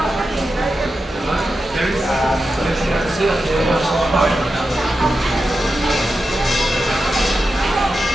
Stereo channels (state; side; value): normal; both; correlation 0.90